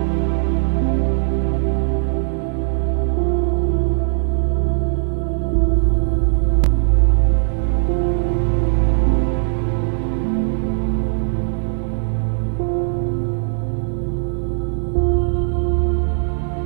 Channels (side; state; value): left; silent; digital silence